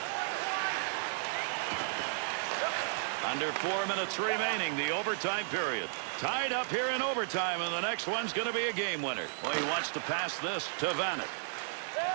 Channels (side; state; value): left; silent; digital silence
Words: Under 4 minutes remaining, the overtime period. Tied up here in overtime, and the next one's going to be a game winner. Well, he wants to pass this to Vanek.